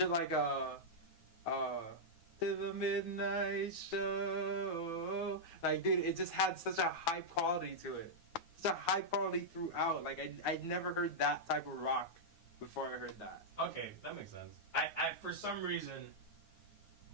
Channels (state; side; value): late; right; 9.5 ms